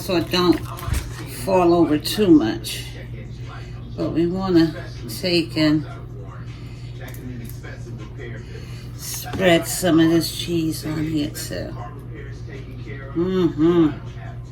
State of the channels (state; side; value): identical; both; correlation 1.00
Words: it don't fall over too much. But we want to take and spread some of this cheese on here too. Mm-hmm.